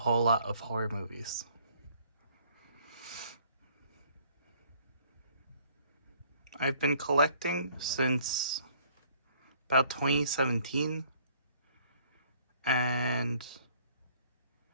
lot of horror movies. I've been collecting since about 2017, and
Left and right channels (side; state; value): both; inverted; correlation -0.60